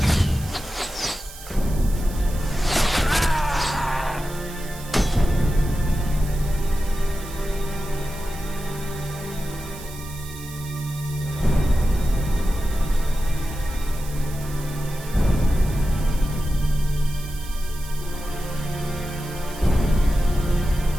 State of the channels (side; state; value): right; noise; hiss, 16 dB below the sound